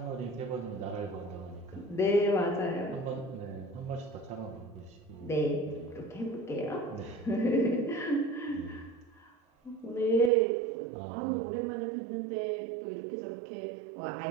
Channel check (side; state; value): left; drops out; at 10.3 s